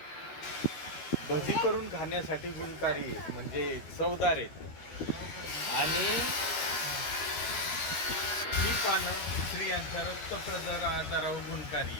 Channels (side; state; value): right; late; 12 ms